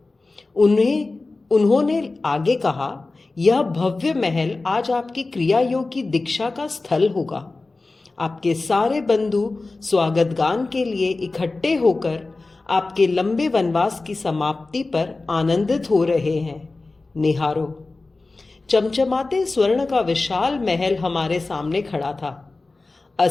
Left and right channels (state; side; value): quieter; right; 3.4 dB